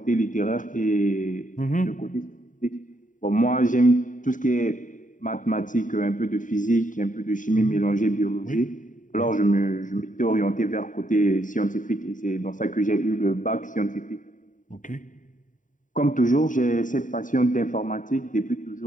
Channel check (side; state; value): right; late; 0.38 ms